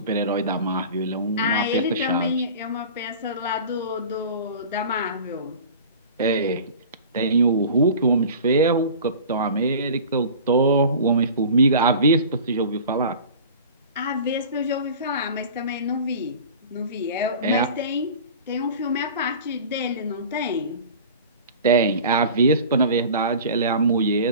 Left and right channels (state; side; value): inverted; both; correlation -0.39